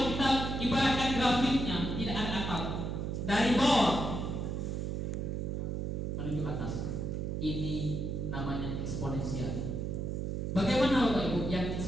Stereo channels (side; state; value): right; noise; hum, 2 dB below the sound